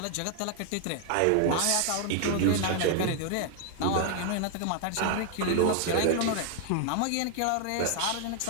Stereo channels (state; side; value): different; both; correlation 0.00